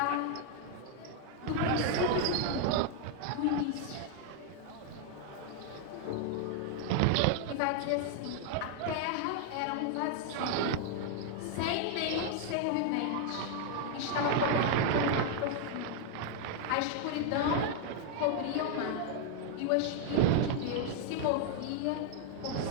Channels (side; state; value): both; different; correlation 0.00